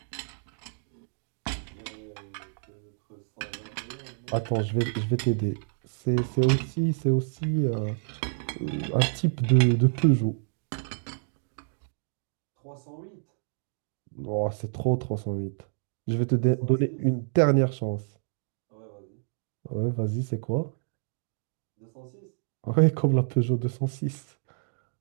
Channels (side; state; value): left; silent; digital silence